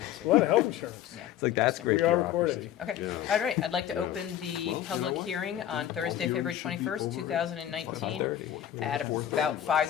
lot of health insurance. Yeah. It's like, that's great. We are bureaucracy. recorded. Okay, Yeah. all right, I'd like to Yeah. open the Well, you public know what? hearing on Thursday, All February hearings should be 21st, over 2019, 5:30. at about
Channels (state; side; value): quieter; right; 11.1 dB